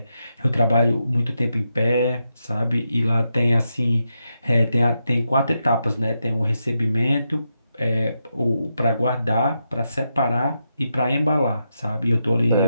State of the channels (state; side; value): inverted; both; correlation -0.85